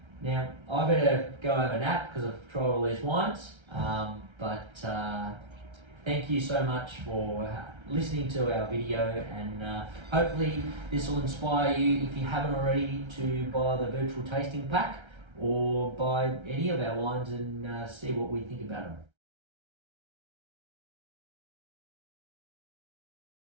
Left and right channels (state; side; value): late; left; 1.3 ms